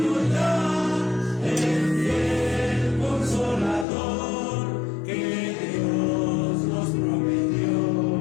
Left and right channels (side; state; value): right; drops out; at 3.9 s